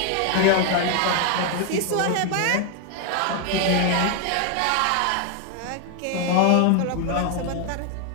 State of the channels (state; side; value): different; both; correlation 0.01